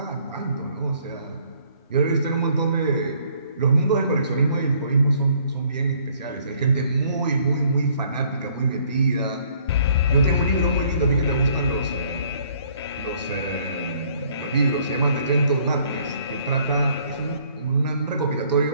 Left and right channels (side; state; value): both; inverted; correlation -0.61